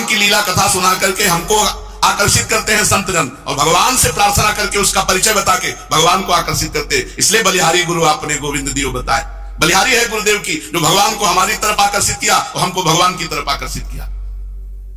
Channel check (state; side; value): identical; both; correlation 1.00